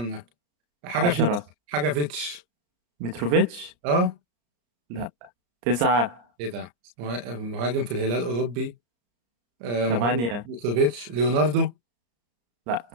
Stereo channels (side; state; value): left; late; 34 ms